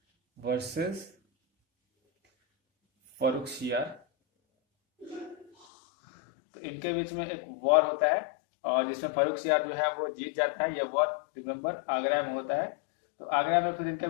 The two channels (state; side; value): drops out; right; at 5.5 s